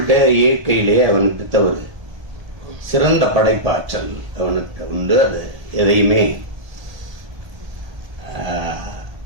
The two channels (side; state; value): left; late; 1.2 ms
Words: இயற்கையிலே அவனுக்கு தவறு சிறந்த படைப்பாற்றல் அவனுக்கு உண்டு. அது எதையுமே